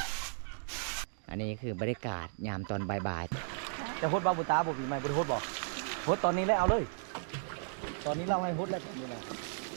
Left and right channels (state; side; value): silent; left; digital silence